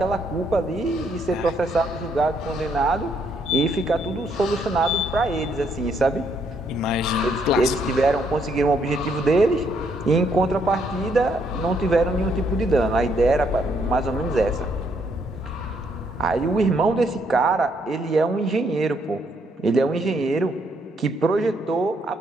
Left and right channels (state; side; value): normal; both; correlation 0.72